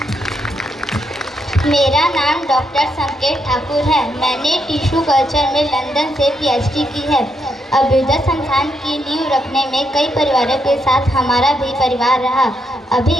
मेरा नाम डॉक्टर संकेत ठाकुर है। मैंने टिश्यू कल्चर में लंदन से पीएचडी की है। अभ्युदय संस्थान की नींव रखने में कई परिवारों के साथ हमारा भी परिवार रहा। अभी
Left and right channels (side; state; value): both; normal; correlation 0.79